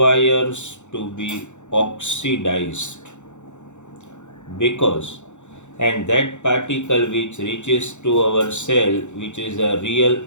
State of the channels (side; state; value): right; late; 0.84 ms